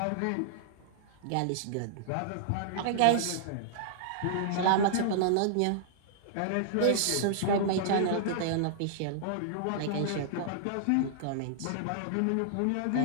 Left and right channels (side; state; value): both; different; correlation -0.01